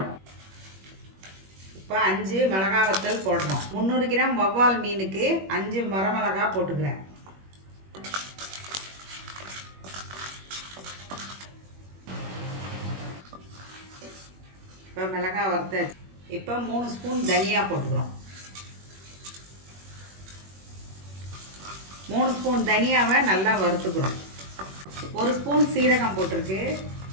இப்போ 5 மிளகாய் வத்தல் போடுறோம். 300 கிராம் வவ்வால் மீனுக்கு 5 வரமிளகா போட்டுக்கிறேன். இப்போ மிளகாய் வறுத்தாச்சு. இப்போ 3 ஸ்பூன் தனியா போட்டுக்கிறோம். 3 ஸ்பூன் தனியாவை நல்லா வறுத்துக்கிறோம். 1 ஸ்பூன் சீரகம் போட்டிருக்கு.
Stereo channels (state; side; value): late; left; 21 ms